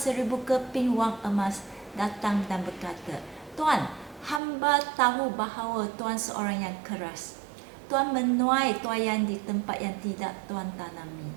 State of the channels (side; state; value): left; drops out; at 4.4 s